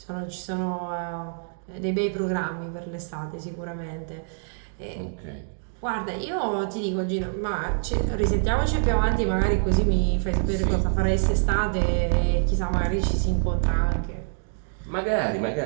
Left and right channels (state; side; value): silent; left; digital silence